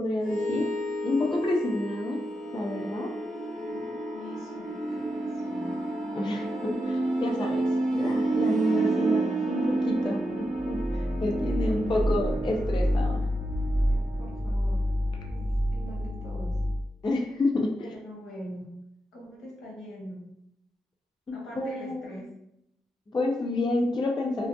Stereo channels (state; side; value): normal; both; correlation 0.87